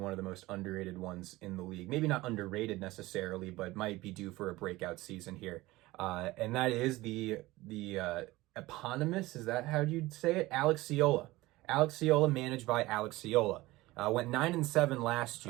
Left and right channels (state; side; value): quieter; left; 19.2 dB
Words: of the most underrated ones in the league. Maybe not underrated necessarily, but might be due for a breakout season here. And that is the eponymous, is that how you'd say it? Alex Ciola. Alex Ciola, managed by Alex Ciola. Went 9-7 last